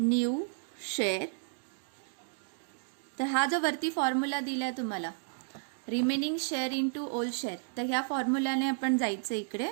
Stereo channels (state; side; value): silent; left; digital silence